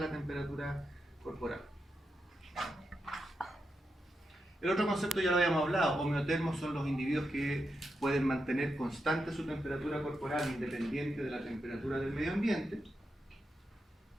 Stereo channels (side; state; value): both; normal; correlation 0.86